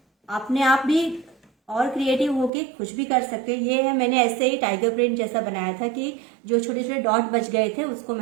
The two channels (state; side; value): drops out; left; at 2.5 s